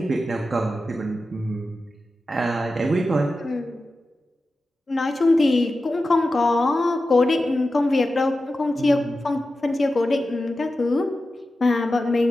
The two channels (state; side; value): normal; both; correlation 0.93